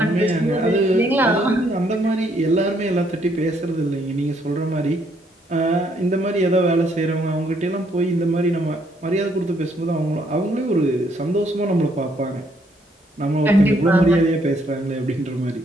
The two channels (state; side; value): normal; both; correlation 0.70